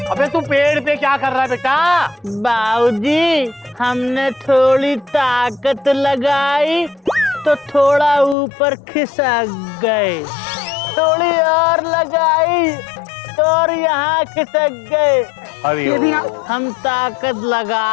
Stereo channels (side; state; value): right; drops out; at 8.3 s